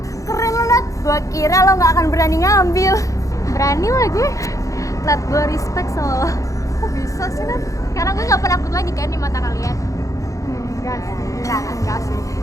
Keren lo, Nat. Gua kira lo gak akan berani ngambil. Berani lah gue. Nat, gue respect sama lo. Kok bisa sih, Nat? Karena gue gak penakut lagi kan di mata kalian. Enggak sih. Enggak sih.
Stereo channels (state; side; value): late; right; 0.16 ms